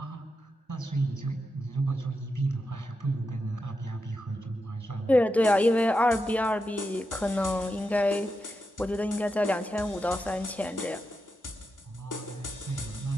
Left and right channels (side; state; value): both; normal; correlation 0.87